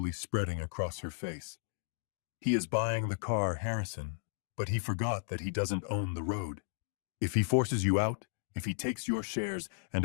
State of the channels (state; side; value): silent; right; digital silence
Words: spreading across her face. He is buying the car, Harrison, but he forgot that he doesn't own the road. If he forces you out, if he takes your shares and